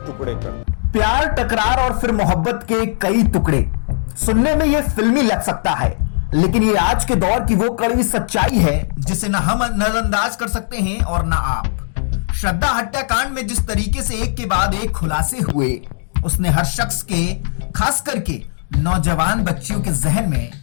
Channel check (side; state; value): right; silent; digital silence